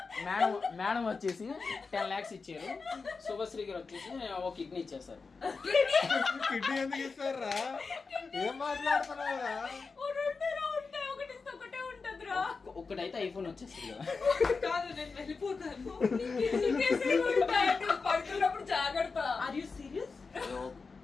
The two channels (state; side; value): quieter; right; 4.5 dB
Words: మేడం వచ్చేసి 10 lakhs ఇచ్చారు, శుభశ్రీ గారు వచ్చేసి ఒక కిడ్నీ ఇచ్చేస్తారు. కిడ్నీ ఎందుకు ఇస్తారా? ఏం మాట్లాడుతున్నావురా? ఒక్కటైతే ఐఫోన్ వచ్చేస్తుంది కదా. కాదు, నేను వెళ్ళిపోతాను. పడుతున్నప్పుడు జాగ్రత్త. Are you serious?